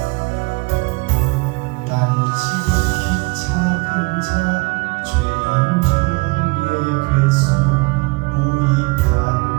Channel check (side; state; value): left; quieter; 26.7 dB